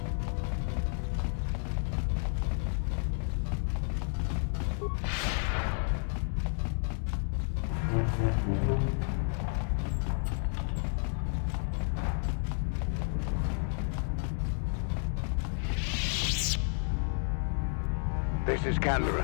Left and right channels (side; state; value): right; silent; 56 dB below the other